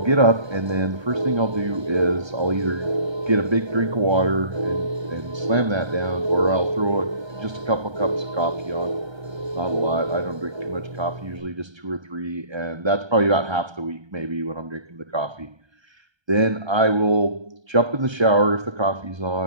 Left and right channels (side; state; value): left; late; 1.3 ms